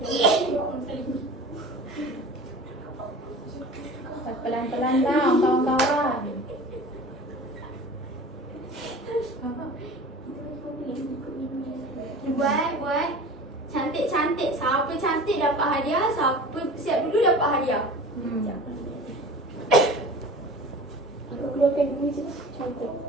pelan-pelan tau, kawan-kawan. Buat. Cantik-cantik. Siapa cantik dapat hadiah, siapa siap dulu dapat hadiah. Aku keluarkan dulu je. Cantik.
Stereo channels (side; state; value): both; normal; correlation 0.38